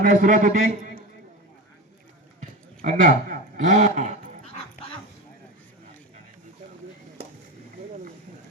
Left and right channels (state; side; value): normal; both; correlation 0.24